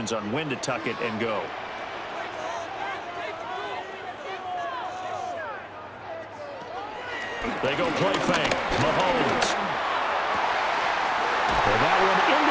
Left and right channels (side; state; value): both; identical; correlation 1.00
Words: on when to tuck it and go. They go play fake. Mahomes. And that one